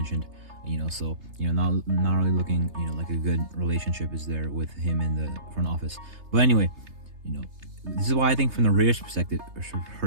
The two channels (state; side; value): late; left; 3.3 ms